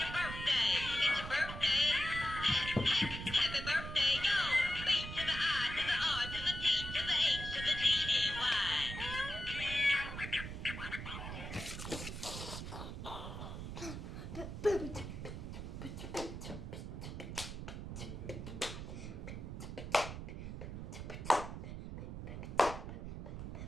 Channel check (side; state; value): right; noise; rumble, 7 dB below the sound